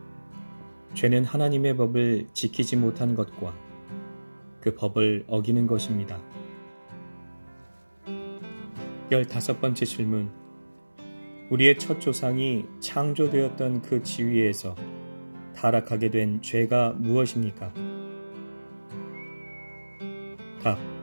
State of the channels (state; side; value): inverted; both; correlation -1.00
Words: 죄는 하나님의 법을 지키지 못한 것과 그 법을 어기는 것입니다. 15번째 질문 우리의 첫 조상이 창조되었던 그 지위에서 타락하게 된 죄가 무엇입니까? 답.